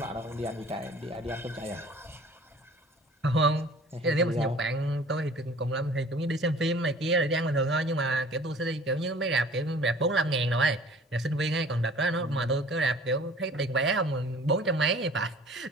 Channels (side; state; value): both; normal; correlation 0.49